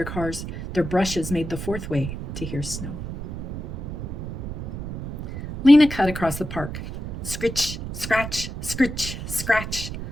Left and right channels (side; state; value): right; noise; rumble, 8 dB below the sound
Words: cars. Their brushes made the 4th way to hear snow. Lina cut across the park. Scritch, scratch, scritch, scratch.